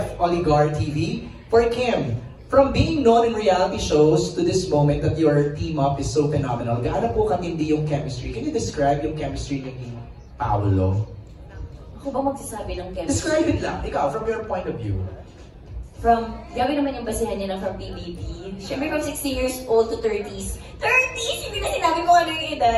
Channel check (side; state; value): both; identical; correlation 1.00